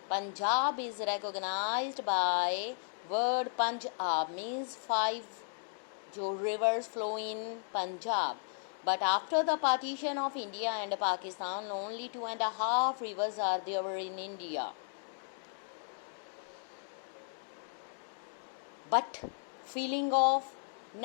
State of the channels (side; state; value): right; silent; digital silence